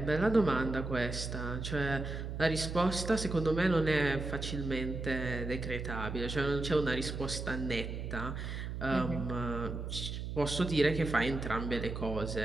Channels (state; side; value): noise; right; hum, 5 dB below the sound